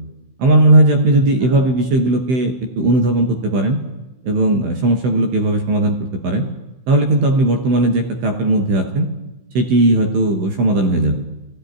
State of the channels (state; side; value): late; left; 16 ms